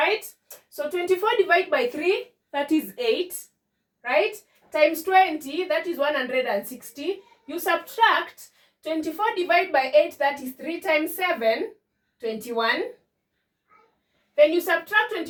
So 24 divided by 3, that is 8, right? Times 20, that is 160. You subtract 24 divided by 8, that is 3 times 7, 21. Then you subtract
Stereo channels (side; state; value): both; identical; correlation 1.00